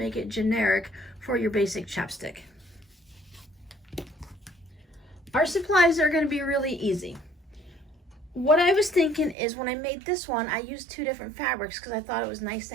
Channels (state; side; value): drops out; left; at 9.3 s